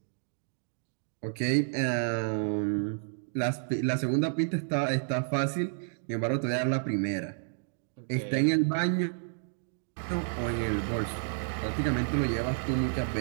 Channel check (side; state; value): left; silent; digital silence